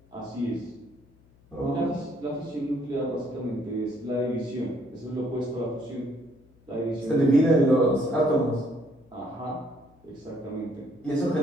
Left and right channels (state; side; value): noise; left; hum, 29 dB below the sound